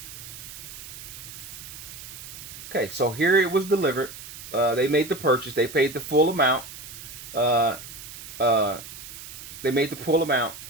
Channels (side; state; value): right; noise; hiss, 13 dB below the sound